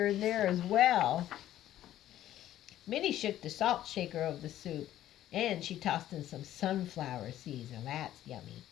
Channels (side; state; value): right; quieter; 12.8 dB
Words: in there as well. Minnie shook the salt shaker of the soup, and she tossed in some sunflower seeds. Now that's yummy.